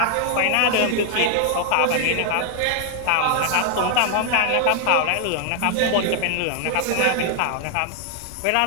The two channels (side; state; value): both; different; correlation 0.00